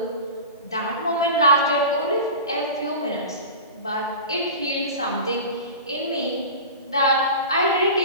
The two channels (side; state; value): both; inverted; correlation -0.32